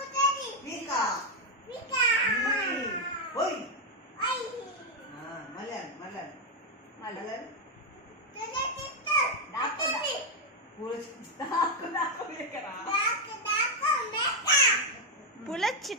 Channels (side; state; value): both; normal; correlation 0.02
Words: పీక ఓయ్ మళ్ళీ పులొచ్చి